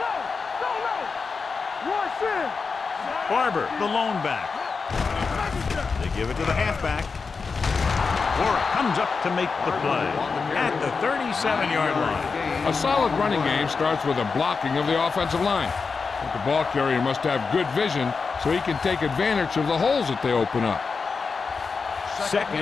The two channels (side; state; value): right; quieter; 4.9 dB